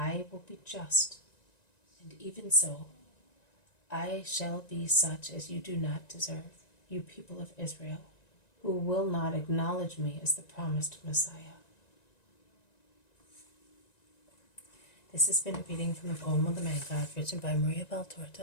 will be just, and even so, I shall be such as you do not deserve, you people of Israel, who will not acknowledge me as the promised Messiah." This has been a reading from the poem of the Man God, written by Maria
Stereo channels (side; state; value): right; late; 1.9 ms